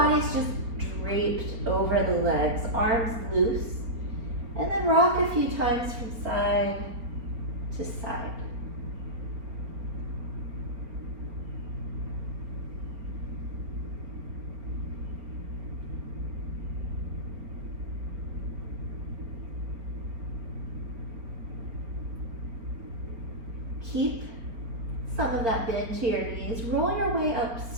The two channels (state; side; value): late; left; 4.4 ms